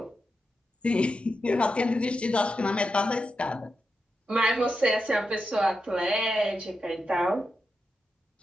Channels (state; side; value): normal; both; correlation 0.87